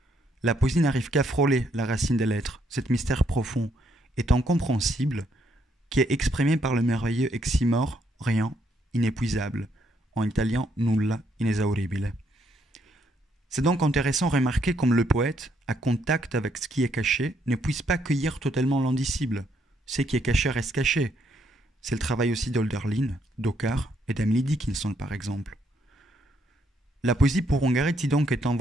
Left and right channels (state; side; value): normal; both; correlation 0.72